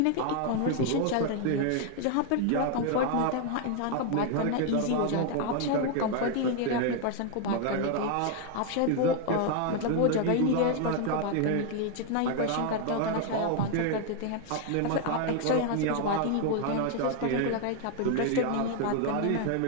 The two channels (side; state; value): both; different; correlation 0.00